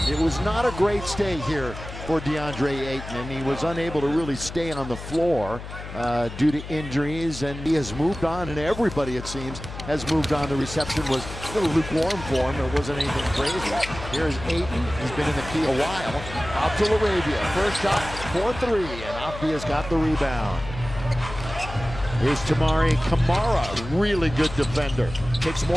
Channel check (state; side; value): noise; left; hum, 11 dB below the sound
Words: It was not a great stay here for DeAndre Ayton, and he was unable to really stay on the floor due to injuries, and he has moved on, and everybody, it seems, has moved on. The reception was a little lukewarm for him. It wasn't anything crazy. Here's Ayton. He's been in the key a while. Out to LaRavia. First shot for three, and Avdia's got the rebound. Here's Tamari Kamara, really good defender. Takes